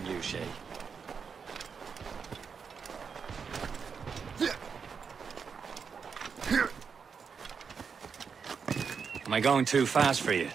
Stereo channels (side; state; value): left; quieter; 6.0 dB